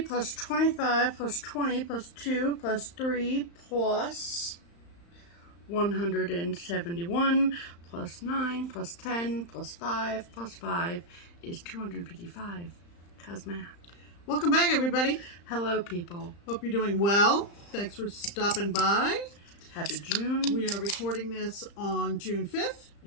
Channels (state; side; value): late; right; 35 ms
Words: 25 plus 20 plus 2 plus 3 plus 171 plus 9 plus 10 plus 5 plus 5 is 255. Cause math. Welcome back, everybody. Hello, people. Hope you're doing well. Thanks for stopping by. Happy June. We are recording this on June 5th.